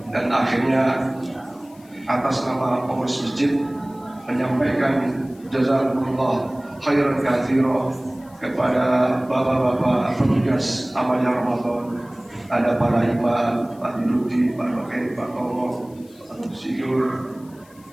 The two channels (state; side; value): noise; left; hiss, 28 dB below the sound